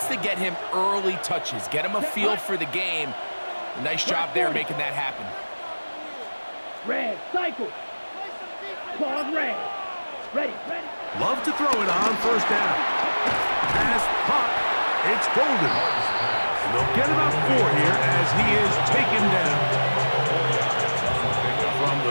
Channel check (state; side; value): inverted; both; correlation -1.00